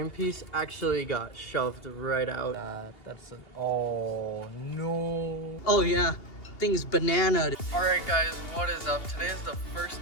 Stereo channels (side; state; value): right; late; 2.8 ms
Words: piece actually got shoved right out. That's oh no. Oh yeah, thing's banana. Alright guys, what is up? Today is the